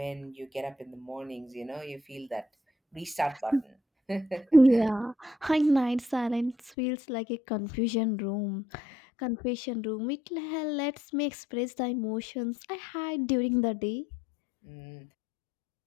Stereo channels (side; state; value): right; drops out; at 6.7 s